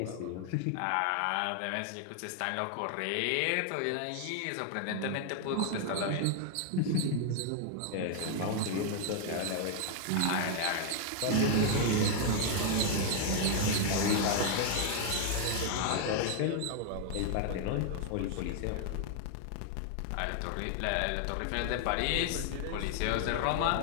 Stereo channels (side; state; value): both; different; correlation 0.00